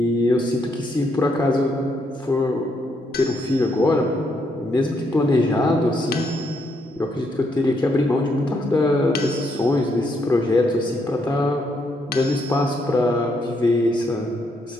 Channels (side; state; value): both; normal; correlation 0.76